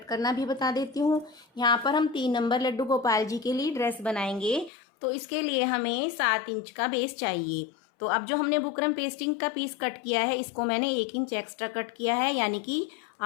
करना भी बता देती हूँ। यहाँ पर हम 3 नंबर लड्डू गोपाल जी के लिए ड्रेस बनाएंगे, तो इसके लिए हमें 7 इंच का बेस चाहिए। तो अब जो हमने बुकरम पेस्टिंग का पीस कट किया है, इसको मैंने 1 इंच एक्स्ट्रा कट किया है, यानी कि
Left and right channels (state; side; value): drops out; right; at 4.7 s